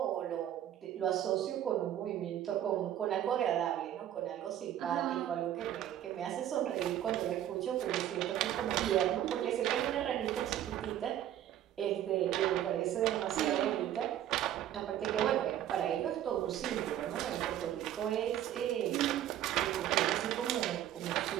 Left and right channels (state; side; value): quieter; left; 11.6 dB